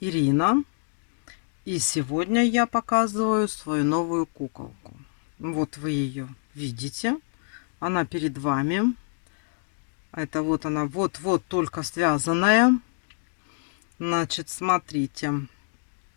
и сегодня я показываю свою новую куколку. Вот вы ее видите, она перед вами. Это вот она, вот-вот только связанная. Значит, смотрите,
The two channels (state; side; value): silent; right; digital silence